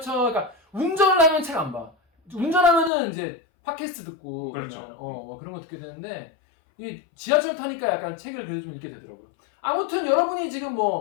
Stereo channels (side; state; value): right; drops out; at 2.9 s